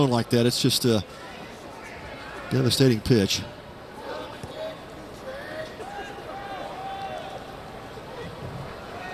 like that, it's just a devastating pitch.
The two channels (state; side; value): identical; both; correlation 1.00